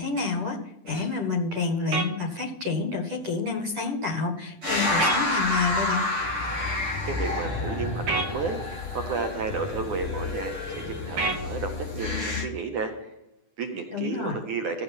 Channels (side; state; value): left; late; 10 ms